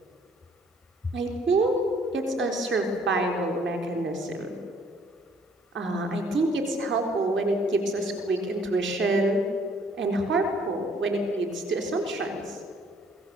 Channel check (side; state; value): both; normal; correlation 0.60